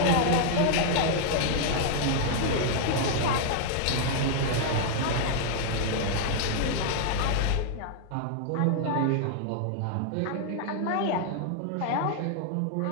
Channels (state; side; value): different; both; correlation 0.00